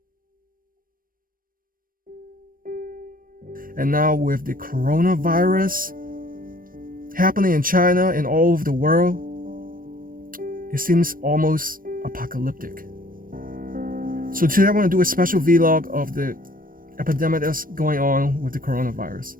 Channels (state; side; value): late; left; 0.41 ms